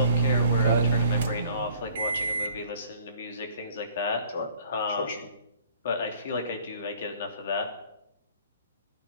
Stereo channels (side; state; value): both; inverted; correlation -0.56